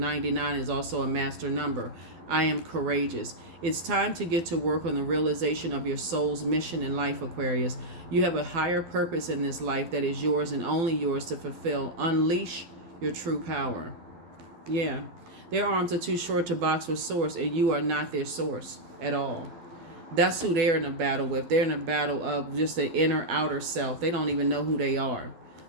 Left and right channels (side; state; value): left; late; 12 ms